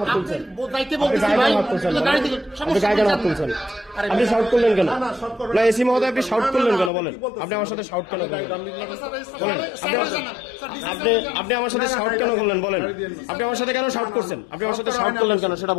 হাত তুলছেন? আপনি গায়ে কেন হাত তুলছেন? আপনি গায়ে কেন হাত তুলছেন? আপনি শাউট করলেন কেন? না এসি মহোদয়, আপনি শাউট করলেন কেন বলেন? আপনি আমার সাথে শাউট কেন করলেন বলেন? আপনি আমার সাথে শাউট কেন করলেন বলেন? আপনি আমার সাথে কেন শাউট করছেন? আপনি আমার সাথে শাউট করলেন কেন সেটা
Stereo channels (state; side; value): drops out; right; at 6.9 s